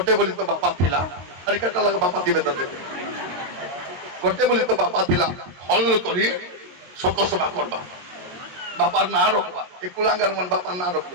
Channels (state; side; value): late; left; 22 ms